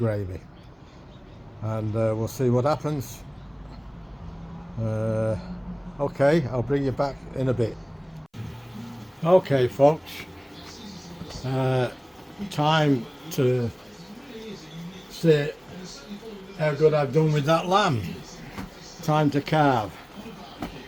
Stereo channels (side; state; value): both; identical; correlation 1.00